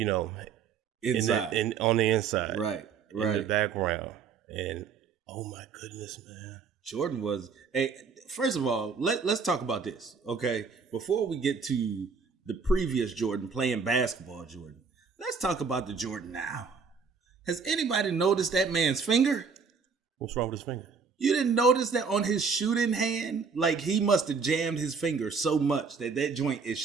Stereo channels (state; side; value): quieter; left; 5.6 dB